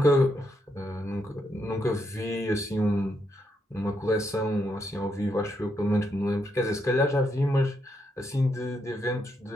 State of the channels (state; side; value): normal; both; correlation 0.79